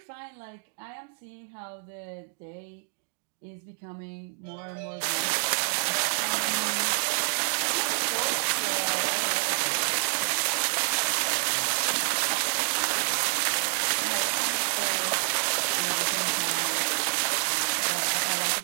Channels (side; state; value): left; silent; digital silence